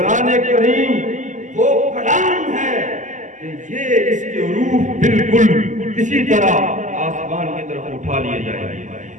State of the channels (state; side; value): late; left; 0.37 ms